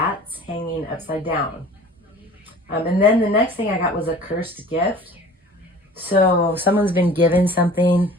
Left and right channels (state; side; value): normal; both; correlation 0.45